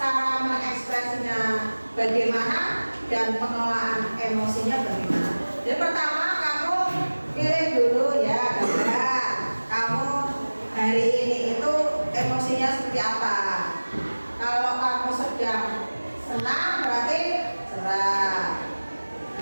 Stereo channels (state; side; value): inverted; both; correlation -1.00